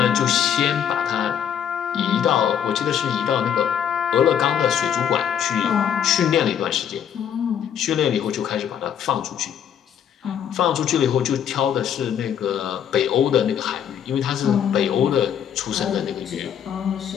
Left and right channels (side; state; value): right; quieter; 8.9 dB